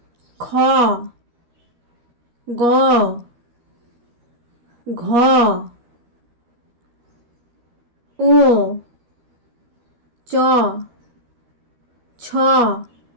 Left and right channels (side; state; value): left; late; 13 ms